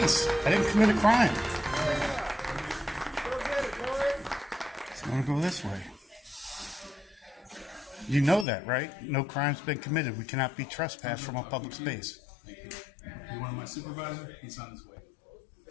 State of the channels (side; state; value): right; drops out; at 8.5 s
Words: I didn't commit a crime. So I'm gonna go this way. You know that, right? No crime's been committed. We cannot be trespassed from a public space. Thank you. You want my supervisor? He's on his way.